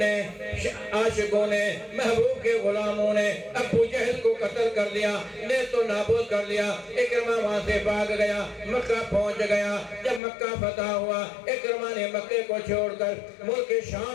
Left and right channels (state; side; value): drops out; right; at 10.2 s